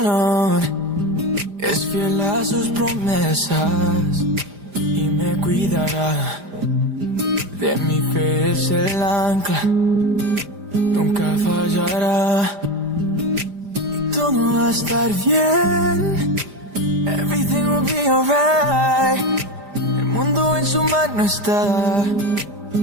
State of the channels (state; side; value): late; left; 5.0 ms